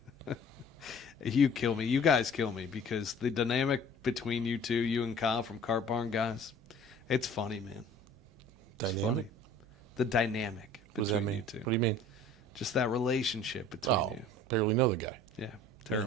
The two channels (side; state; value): right; noise; hum, 27 dB below the sound